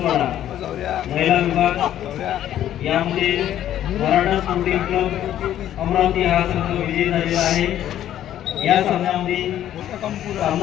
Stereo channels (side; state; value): right; quieter; 11.7 dB